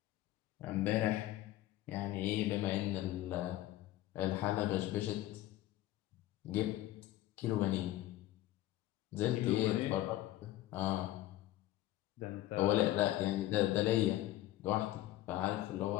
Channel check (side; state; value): right; quieter; 15.1 dB